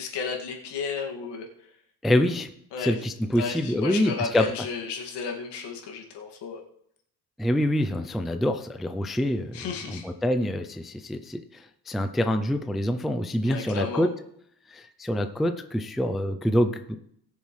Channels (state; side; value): normal; both; correlation 0.79